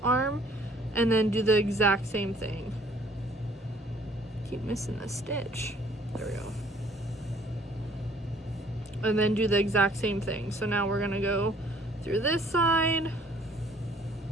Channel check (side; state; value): both; normal; correlation 0.59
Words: and then do the exact same thing. Keep missing the stitch. There we go. And then do the exact same thing. So now we're going to go through this side,